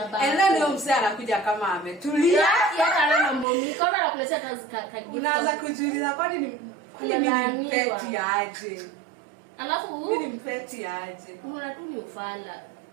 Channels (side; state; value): left; drops out; at 3.5 s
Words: And then leo msee anakuja kama ametulia. Kana mambo mingi kama anakuletea kazi. Unaanza kujiuliza kwani ni peti aje? Alafu mimi ni mpeti aje? Unaona tu ni ufala.